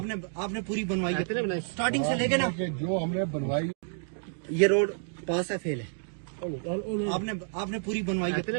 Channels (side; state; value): left; silent; digital silence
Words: نے پوری بنوائی ہے اسٹارٹنگ سے لے کے نا جو ہم نے بنوائی یہ روڈ پاس ہے فیل ہے آپ نے پوری بنوائی